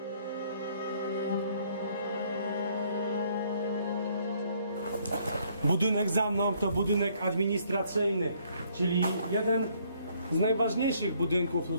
Budynek za mną to budynek administracyjny, czyli jeden z najważniejszych budynków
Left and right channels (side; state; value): both; inverted; correlation -0.65